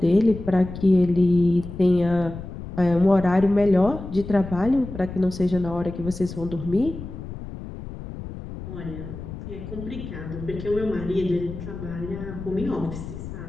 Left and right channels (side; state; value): left; noise; rumble, 10 dB below the sound